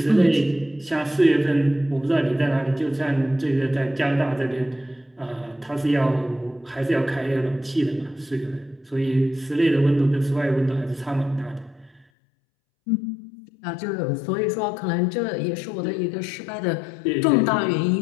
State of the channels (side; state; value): right; drops out; at 12.1 s